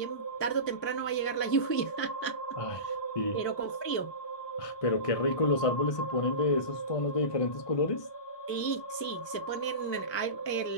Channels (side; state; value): right; late; 1.2 ms